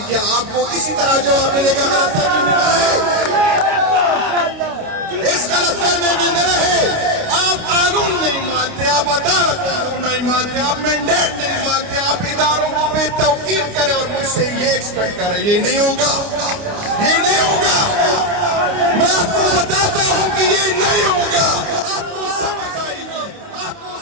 کیا. آپ کو اسی طرح جواب ملے گا. اس غلط فہمی میں نہ رہے. آپ قانون نہیں مانتے, آپ عدالت قانون نہیں مانتے, آپ مینڈیٹ نہیں مانتے, آپ اداروں کو بے توقیر کریں اور مجھ سے یہ ایکسپیکٹ کریں. یہ نہیں ہوگا, یہ نہیں ہوگا. میں آپ کو بتاتا ہوں کہ یہ نہیں ہوگا. آپ کو سمجھ آئے گی, آپ کو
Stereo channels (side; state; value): left; late; 29 ms